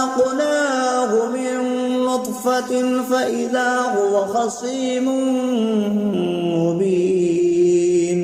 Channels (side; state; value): both; identical; correlation 1.00